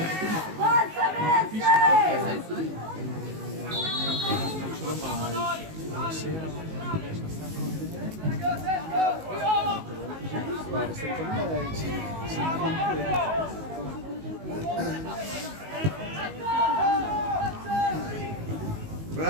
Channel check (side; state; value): left; late; 19 ms